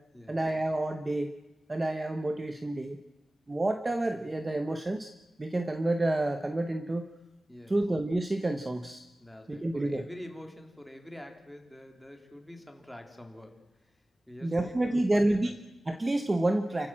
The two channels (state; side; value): normal; both; correlation 0.97